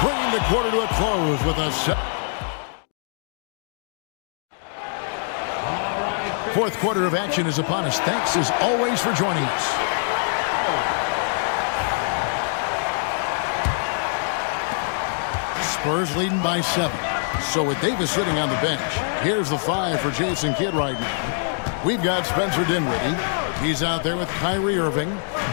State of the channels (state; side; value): silent; right; digital silence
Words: bringing the quarter to a close with a fourth quarter of action is upon us. Thanks as always for joining us. Spurs leading by 7. So with Davis sitting on the bench, here's the 5 for Jason Kidd right now. We've got Spencer Dinwiddie. He's out there with Kyrie Irving.